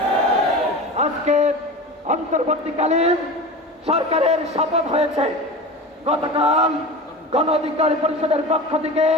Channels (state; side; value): normal; both; correlation 0.31